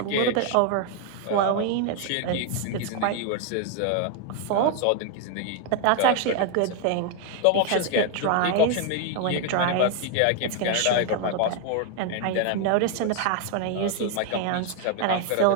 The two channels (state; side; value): different; both; correlation 0.01